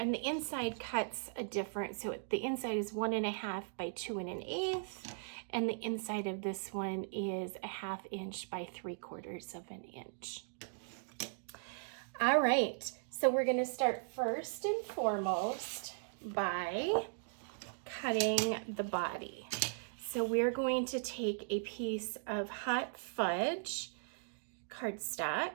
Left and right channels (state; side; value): silent; left; digital silence